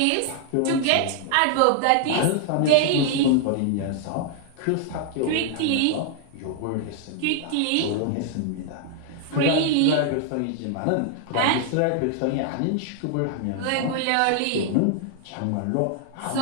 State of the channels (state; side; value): different; both; correlation 0.00